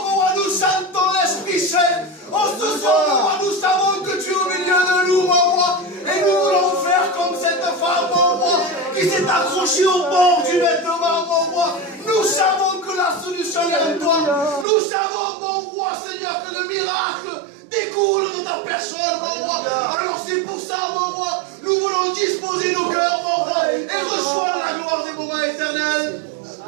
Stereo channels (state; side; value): drops out; left; at 14.7 s